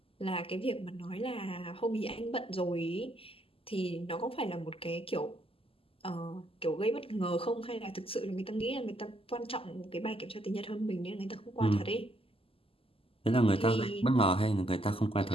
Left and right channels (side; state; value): right; late; 0.26 ms